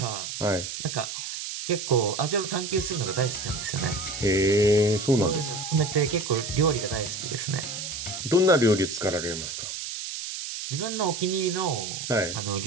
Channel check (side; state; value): right; noise; hiss, 6 dB below the sound